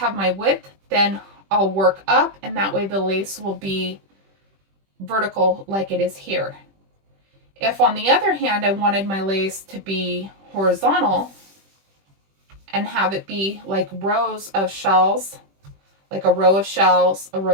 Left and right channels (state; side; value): late; left; 21 ms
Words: my width, then I'll work up, and that way the lace will be vertical like it is here. If on the other hand I wanted my lace to be horizontal and have it be like rows of shells, like a row of shells, a